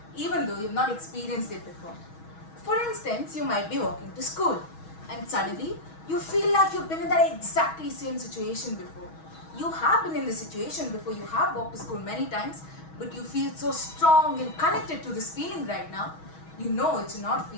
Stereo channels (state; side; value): late; right; 6.3 ms